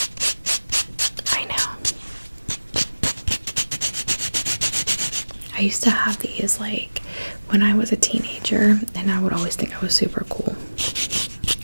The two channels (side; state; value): both; inverted; correlation -1.00